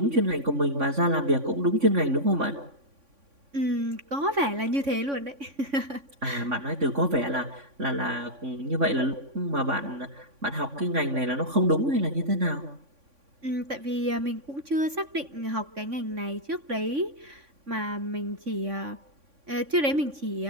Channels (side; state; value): left; late; 3.6 ms